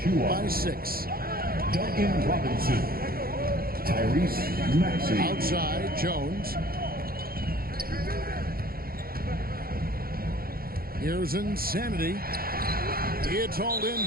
by 6. Duncan Robinson. Tyrese Maxey. Outside, Jones. Here's Insanity. It's hauled in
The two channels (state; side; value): late; left; 0.43 ms